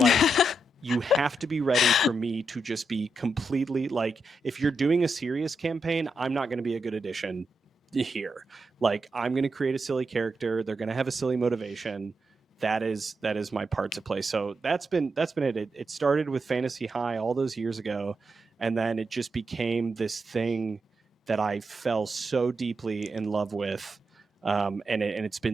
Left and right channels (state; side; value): normal; both; correlation 0.85